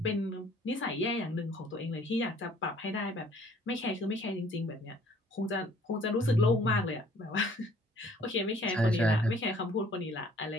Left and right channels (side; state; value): both; normal; correlation 0.58